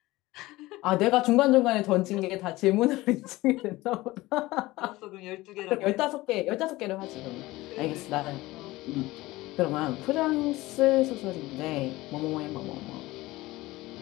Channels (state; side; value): quieter; right; 19.1 dB